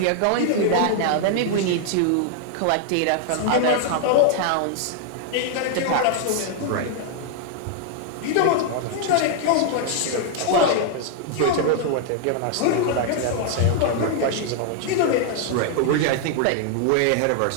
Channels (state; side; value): different; both; correlation -0.01